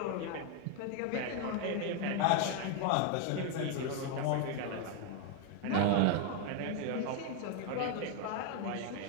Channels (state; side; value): different; both; correlation 0.01